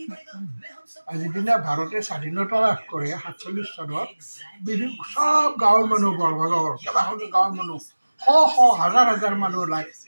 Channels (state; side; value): inverted; both; correlation -1.00